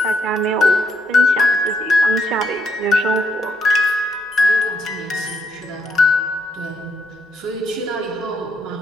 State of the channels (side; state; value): both; normal; correlation 0.75